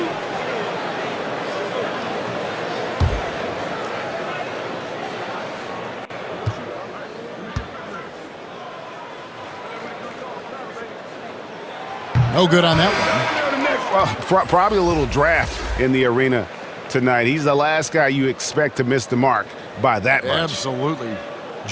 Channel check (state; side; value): identical; both; correlation 1.00